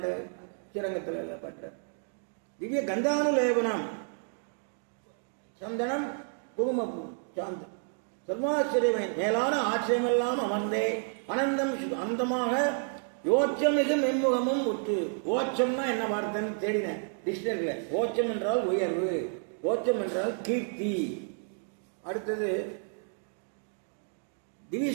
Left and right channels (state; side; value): silent; left; 56 dB below the other